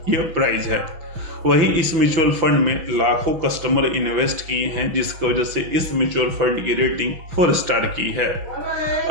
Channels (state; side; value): late; left; 6.1 ms